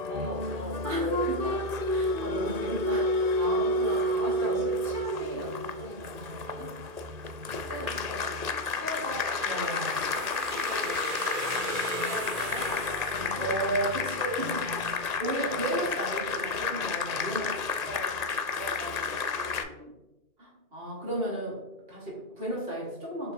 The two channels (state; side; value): late; left; 2.4 ms